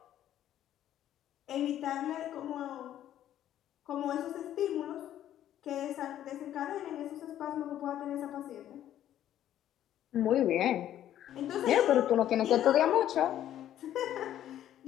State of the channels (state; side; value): quieter; right; 11.7 dB